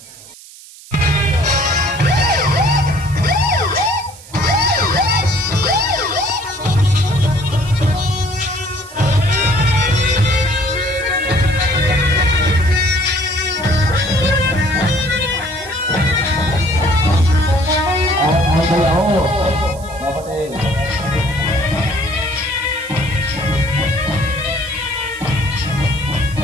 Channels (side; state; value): right; noise; hiss, 19 dB below the sound